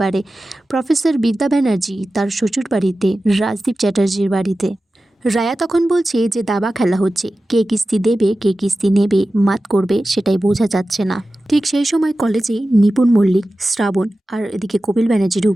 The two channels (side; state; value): both; normal; correlation 0.94